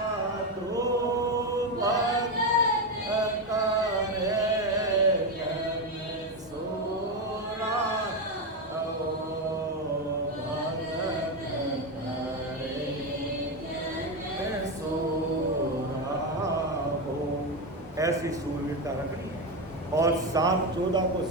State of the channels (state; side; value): normal; both; correlation 0.11